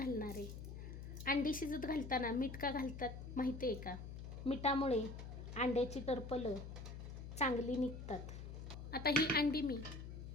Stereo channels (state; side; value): noise; left; hum, 9 dB below the sound